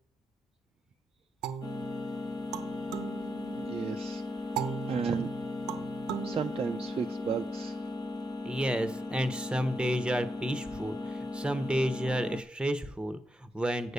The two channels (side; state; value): both; normal; correlation 0.83